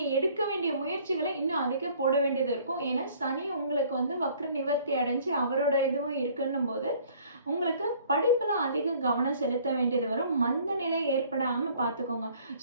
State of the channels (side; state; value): both; inverted; correlation -0.56